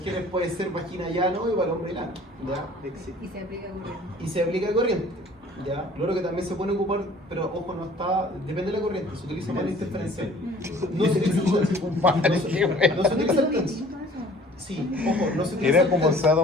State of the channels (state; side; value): normal; both; correlation 0.51